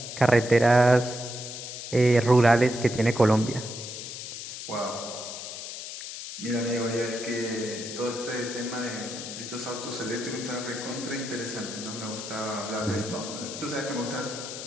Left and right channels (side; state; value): left; noise; hiss, 9 dB below the sound